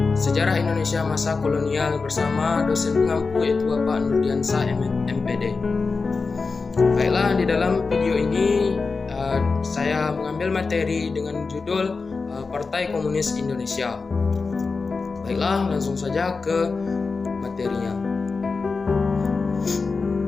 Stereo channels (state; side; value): quieter; right; 4.4 dB